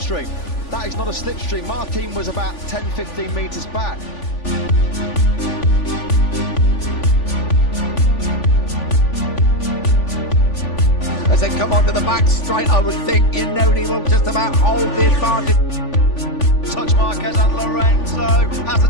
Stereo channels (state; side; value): late; right; 3.5 ms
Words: That is not a slipstream. Martin was about 10-15 metres back. As they come onto the back straight, I would think he will just about hold the advantage. Touch Marquez and Lorenzo. Has the